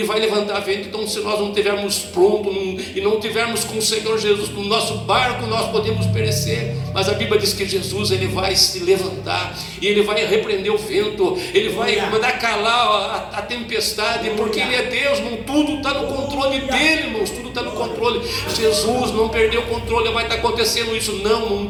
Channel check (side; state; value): both; identical; correlation 1.00